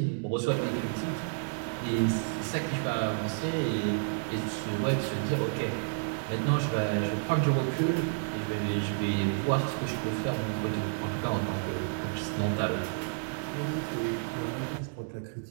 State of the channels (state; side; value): silent; left; digital silence